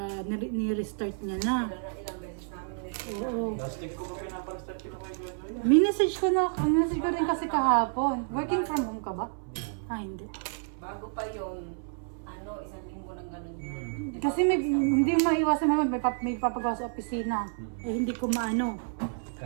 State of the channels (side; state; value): left; silent; 58 dB below the other